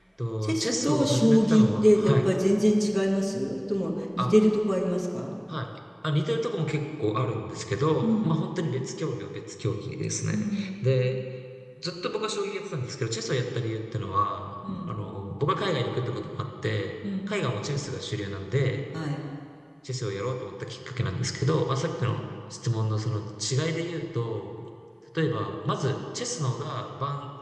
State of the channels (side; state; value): both; identical; correlation 1.00